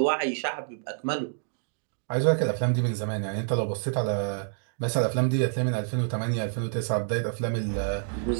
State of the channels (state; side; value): silent; left; digital silence